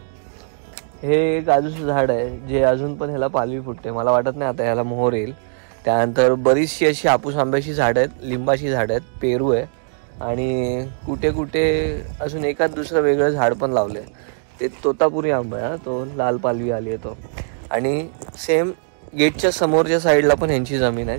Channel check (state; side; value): silent; left; digital silence